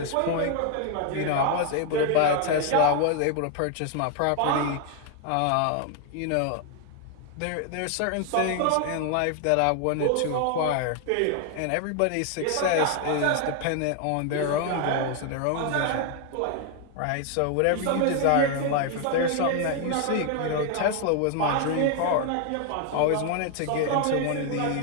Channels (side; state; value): both; different; correlation 0.00